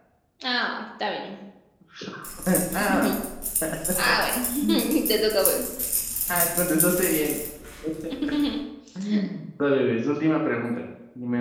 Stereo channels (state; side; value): identical; both; correlation 1.00